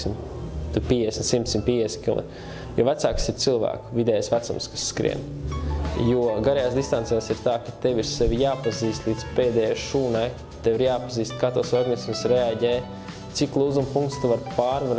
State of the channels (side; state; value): both; identical; correlation 1.00